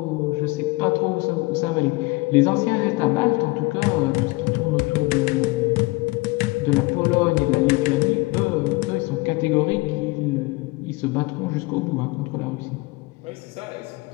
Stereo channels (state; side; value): quieter; right; 23.7 dB